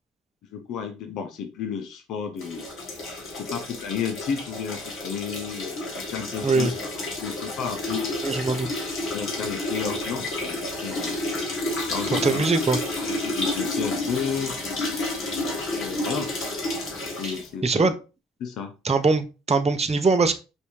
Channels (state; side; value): normal; both; correlation 0.56